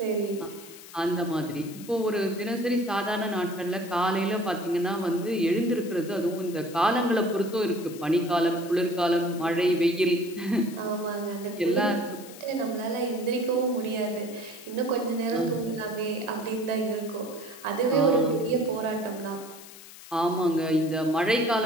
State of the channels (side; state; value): left; noise; hiss, 17 dB below the sound